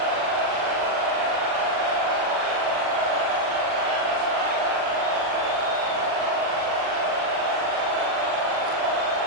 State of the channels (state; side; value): late; left; 40 ms